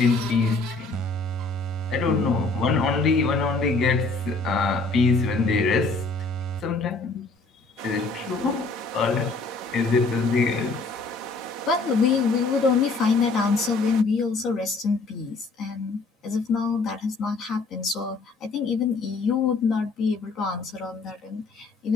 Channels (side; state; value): right; quieter; 3.6 dB